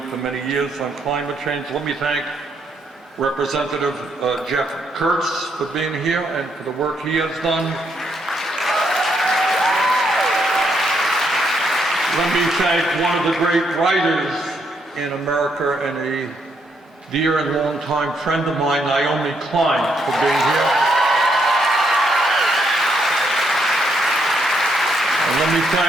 for many years on climate change. Let me thank Representative Jeff Kurtz for being here and for the work he has done. Let me thank one of the great writers in America and a dear and longtime friend of mine, Naomi Klein, for being here. And let me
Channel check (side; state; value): both; normal; correlation 0.75